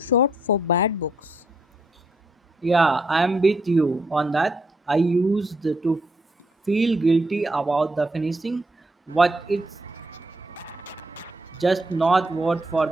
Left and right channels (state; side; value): normal; both; correlation 0.74